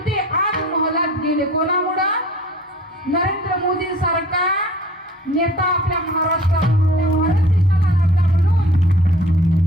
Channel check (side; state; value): both; normal; correlation 0.48